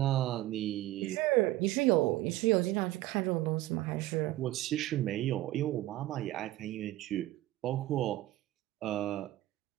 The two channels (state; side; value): quieter; left; 16.0 dB